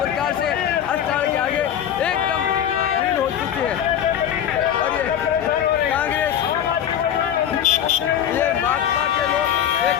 से अस्पताल के आगे एकदम भीड़ हो चुकी है और ये कांग्रेस, ये भाजपा के लोग, एक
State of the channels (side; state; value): right; quieter; 9.8 dB